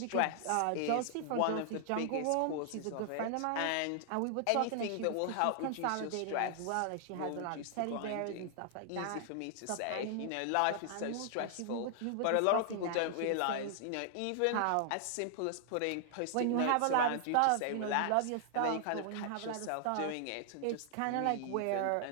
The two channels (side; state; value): both; different; correlation -0.01